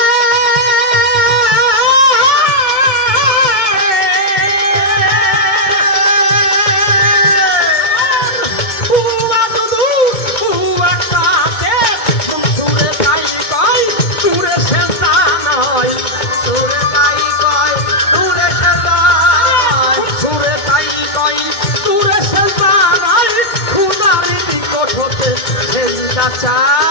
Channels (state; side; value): late; right; 2.1 ms